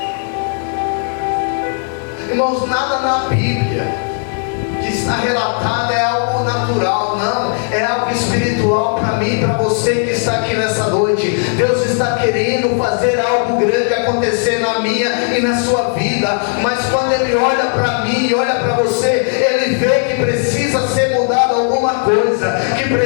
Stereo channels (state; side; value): silent; right; 56 dB below the other